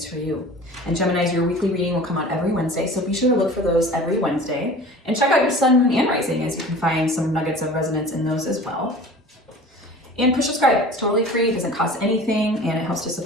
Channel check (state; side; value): normal; both; correlation 0.41